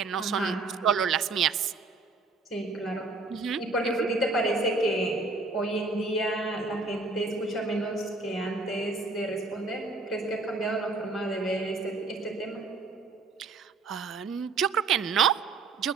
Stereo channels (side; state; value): left; quieter; 3.8 dB